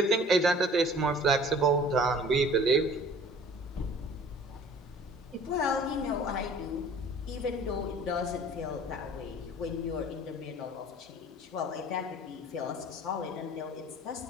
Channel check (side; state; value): both; normal; correlation 0.48